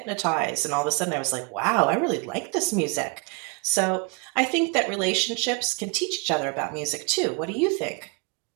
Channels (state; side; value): quieter; left; 32.7 dB